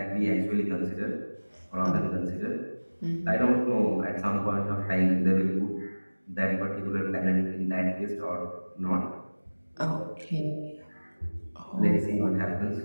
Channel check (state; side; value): inverted; both; correlation -1.00